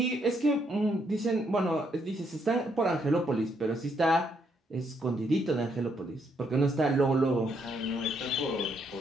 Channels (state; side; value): normal; both; correlation 0.74